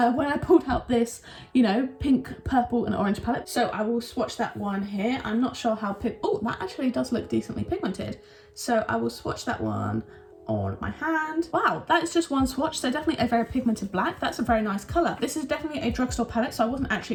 I pulled out this, you know, pink, purple and orange palette. So I will swatch that one here. I'm not sure how oh, that actually does look decently pigmented. So I will swatch that one on my hand. Wow, that is just one swatch, so definitely a very pigmented black. That's a very nice color. This is definitely a drugstore palette, so I wasn't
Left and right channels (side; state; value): both; identical; correlation 1.00